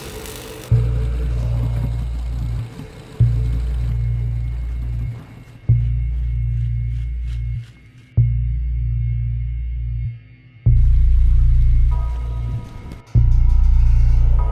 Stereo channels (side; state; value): both; identical; correlation 1.00